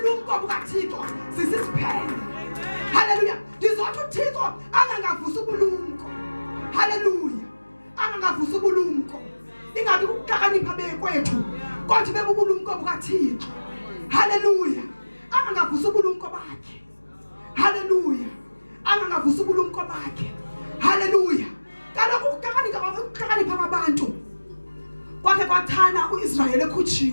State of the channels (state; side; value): inverted; both; correlation -1.00